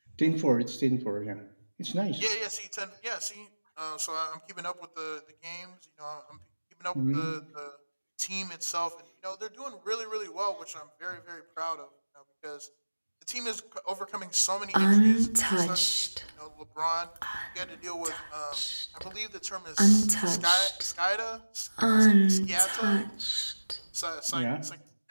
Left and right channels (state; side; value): inverted; both; correlation -1.00